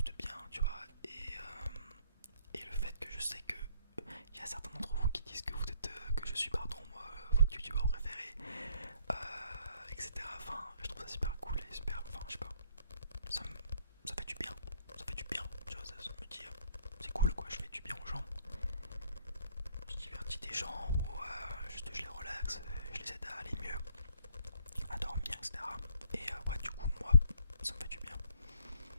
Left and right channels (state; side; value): inverted; both; correlation -0.64